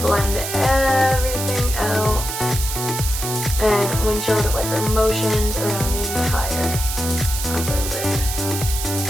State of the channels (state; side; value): noise; right; hiss, 5 dB below the sound